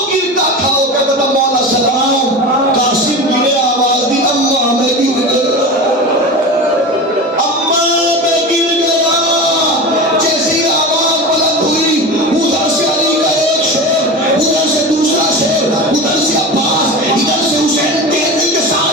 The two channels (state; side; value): normal; both; correlation 0.28